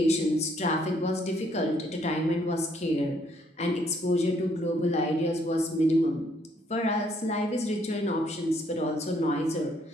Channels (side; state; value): both; normal; correlation 0.68